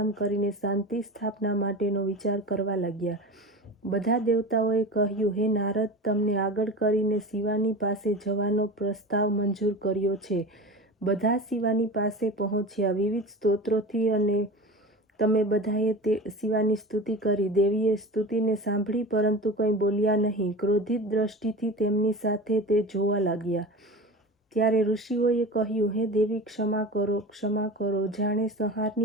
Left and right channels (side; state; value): both; normal; correlation 0.32